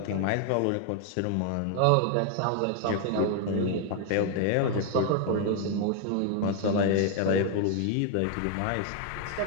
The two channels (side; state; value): both; different; correlation 0.00